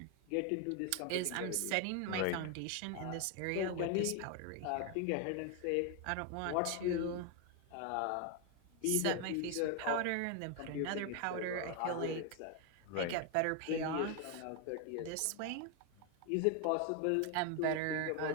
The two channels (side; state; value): both; different; correlation 0.01